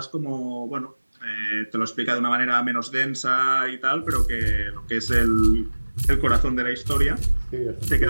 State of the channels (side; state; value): both; inverted; correlation -1.00